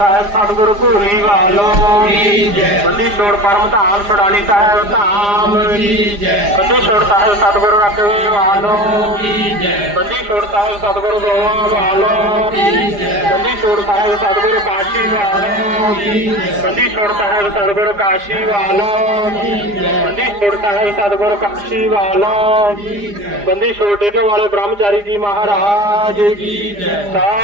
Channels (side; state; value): left; late; 4.9 ms